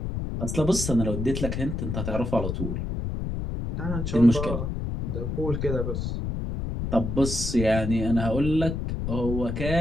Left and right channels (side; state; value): left; noise; rumble, 3 dB below the sound